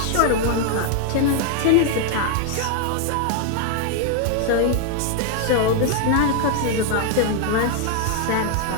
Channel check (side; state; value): both; different; correlation 0.00